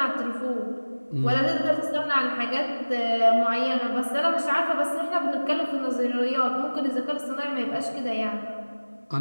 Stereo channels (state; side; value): inverted; both; correlation -1.00